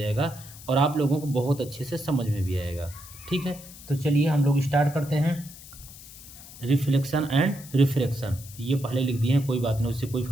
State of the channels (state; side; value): noise; left; hiss, 17 dB below the sound